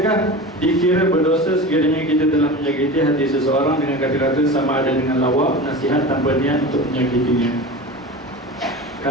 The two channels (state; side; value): normal; both; correlation 0.31